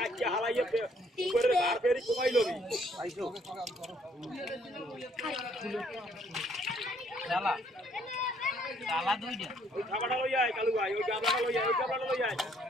হালাইয়া উপরে বার ফেরি কমাই লবি আইছো চালা চালা দুইটা ওই খাবারটা লই আয় কালু ভাই ওই গাবলাটা লই আয় ওই গাবলাটা লই আয়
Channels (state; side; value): normal; both; correlation 0.66